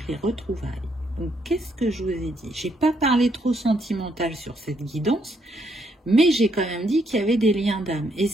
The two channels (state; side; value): normal; both; correlation 0.74